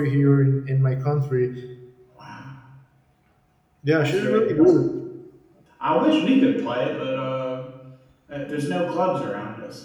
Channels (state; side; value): identical; both; correlation 1.00